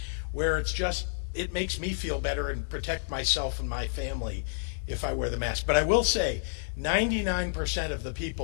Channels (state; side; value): silent; right; 58 dB below the other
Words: where it makes me feel better and protect myself and my family if I wear the mask. But I will say, 99% of the